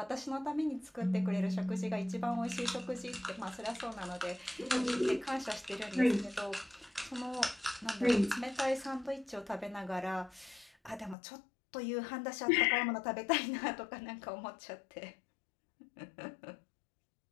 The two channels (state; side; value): drops out; right; at 11.2 s